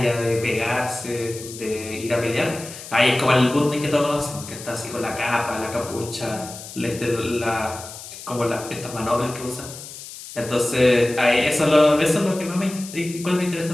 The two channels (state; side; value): noise; left; hiss, 13 dB below the sound